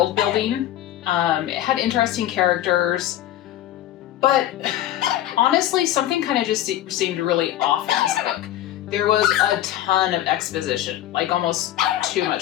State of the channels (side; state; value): right; quieter; 13.1 dB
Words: building. It had interesting characters, but honestly, something kind of just seemed really off in this book. There was a ton of exposition, like almost too